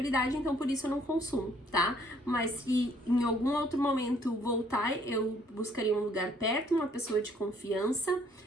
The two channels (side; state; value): both; normal; correlation 0.63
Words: então por isso eu não consumo, tá? Mas se em algum outro momento voltar, eu buscaria um lugar perto, uma pessoa de confiança,